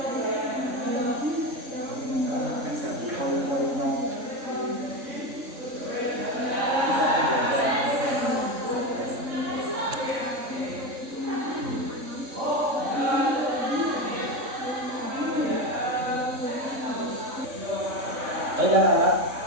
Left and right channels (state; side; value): late; left; 3.6 ms